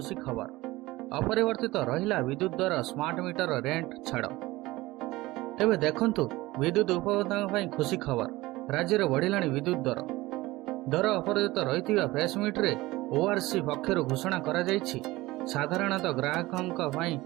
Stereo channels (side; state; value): left; quieter; 19.4 dB